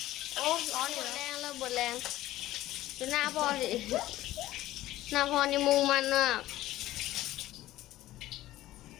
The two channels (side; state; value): right; quieter; 15.4 dB